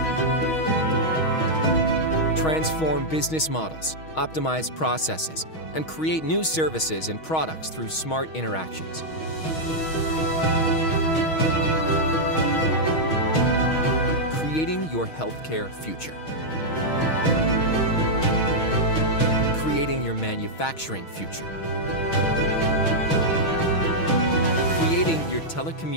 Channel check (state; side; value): late; right; 6.3 ms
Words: Transform business models, optimize processes, and create new services and products through smart interactions. Creating your healthcare future. Creating your manufacturing future. Creating your